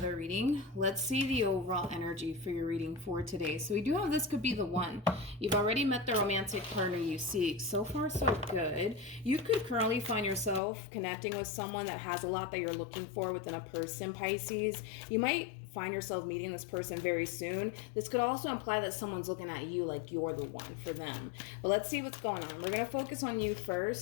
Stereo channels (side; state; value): right; drops out; at 10.6 s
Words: reading. Let's see the overall energy for your reading for today. So we do have this could be the one. You've already met the romantic partner you seek. So far, so good. You could currently find yourself connecting with someone that has a lot that you're looking for within a person, Pisces. You might find yourself meeting this person very soon. This could also imply that someone's looking at you like you're the one for them. But let's see what's going on. We're going to focus on you